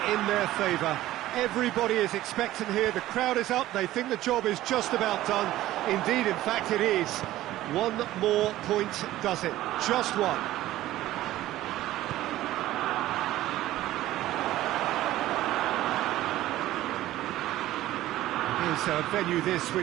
in their favour. Everybody is expectant here, the crowd is up, they think the job is just about done. Indeed, in fact it is. One more point does it, just one. Is a venue this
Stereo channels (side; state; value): left; quieter; 15.1 dB